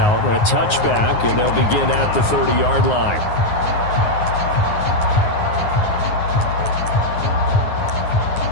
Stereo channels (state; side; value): late; right; 9.6 ms